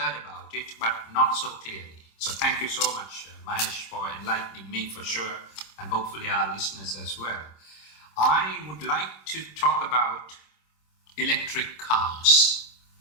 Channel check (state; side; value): late; right; 26 ms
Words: about it, but not so clearly. So thank you so much, Mahesh, for enlightening me for sure, and hopefully our listeners as well. I would like to talk about electric cars,